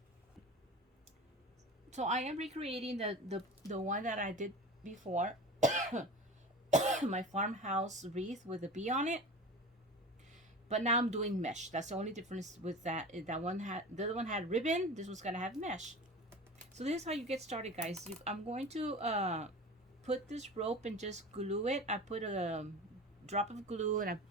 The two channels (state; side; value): normal; both; correlation 0.33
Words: So I am recreating the one that I did before. My farmhouse wreath with a bee on it. But now I'm doing mesh. That's the only difference with that. The other one had ribbon. This one's gonna have mesh. So this is how you get started, guys. I'm going to put this rope and just glue it. I put a drop of glue and I